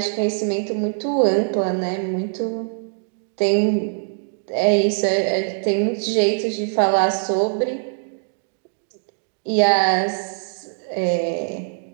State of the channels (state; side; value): silent; left; digital silence